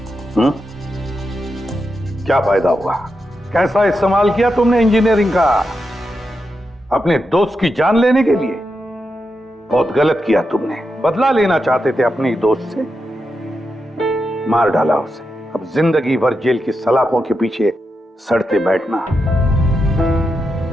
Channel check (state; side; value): normal; both; correlation 0.87